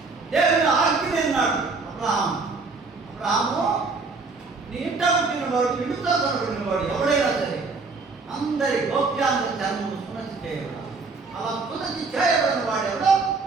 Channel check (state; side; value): quieter; left; 4.1 dB